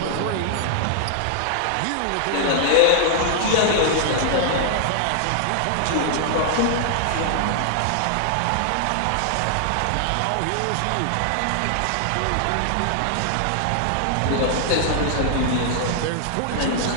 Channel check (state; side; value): different; both; correlation -0.01